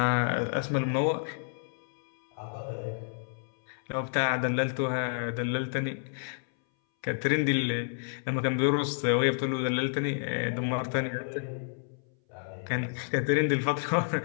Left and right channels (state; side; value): silent; right; 58 dB below the other